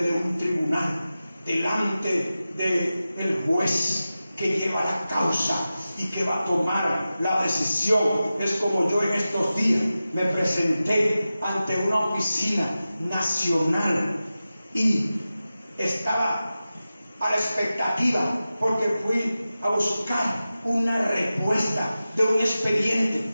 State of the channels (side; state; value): both; inverted; correlation -0.94